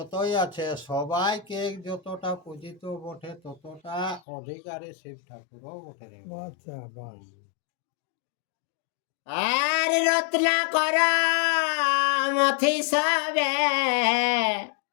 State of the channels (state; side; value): drops out; right; at 4.2 s